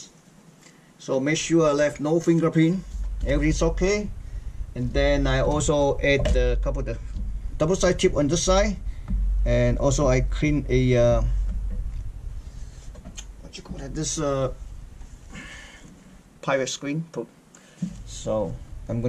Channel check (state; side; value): identical; both; correlation 1.00